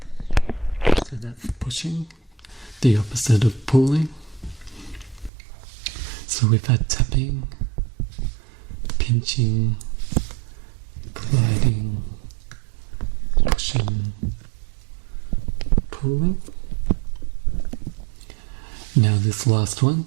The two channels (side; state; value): left; drops out; at 5.3 s